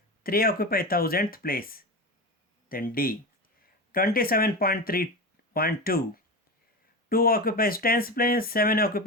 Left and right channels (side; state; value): both; normal; correlation 0.23